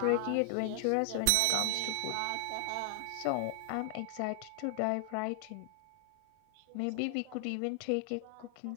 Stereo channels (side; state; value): both; different; correlation 0.00